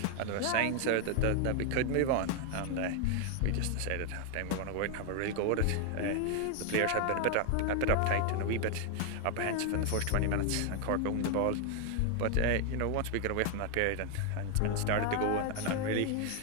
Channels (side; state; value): both; different; correlation 0.00